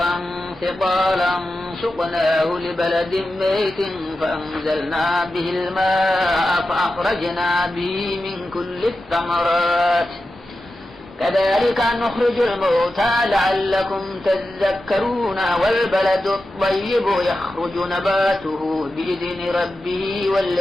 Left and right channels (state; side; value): normal; both; correlation 0.91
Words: ثقالا سقناه لبلد ميت فأنزلنا به الماء فأخرجنا به من كل الثمرات كذلك نخرج الموتى لعلكم تذكرون والبلد الطيب يخرج نباته بإذن ربه